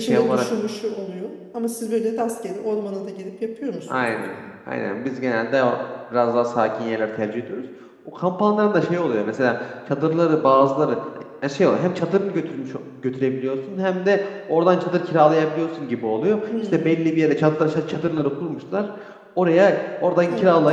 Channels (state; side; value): identical; both; correlation 1.00